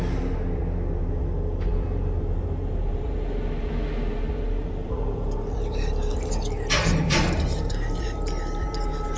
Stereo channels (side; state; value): both; identical; correlation 1.00